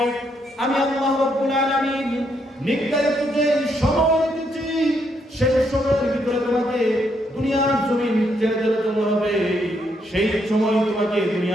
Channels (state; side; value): normal; both; correlation 0.75